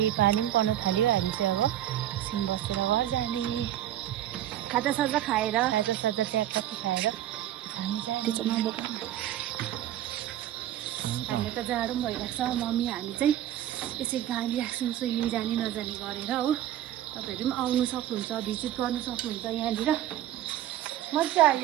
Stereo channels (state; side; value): quieter; left; 12.3 dB